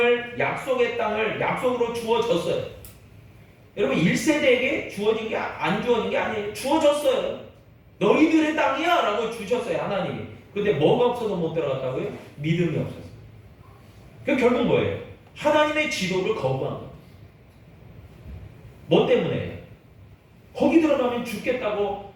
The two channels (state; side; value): identical; both; correlation 1.00